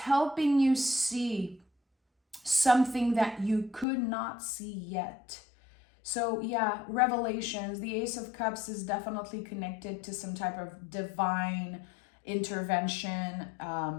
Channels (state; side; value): drops out; right; at 3.9 s